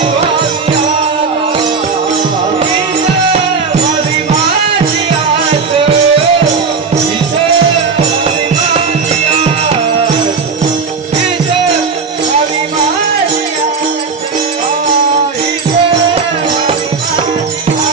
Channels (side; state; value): left; quieter; 5.0 dB